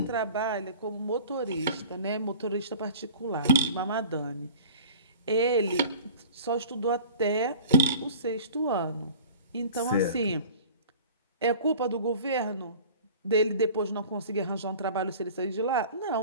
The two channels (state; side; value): inverted; both; correlation -0.44